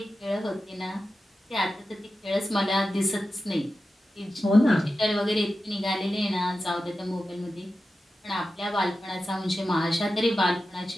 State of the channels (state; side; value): normal; both; correlation 0.92